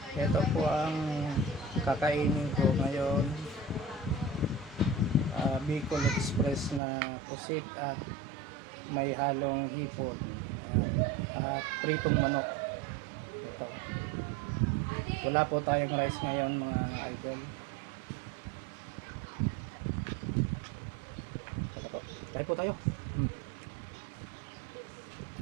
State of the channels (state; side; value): drops out; left; at 6.8 s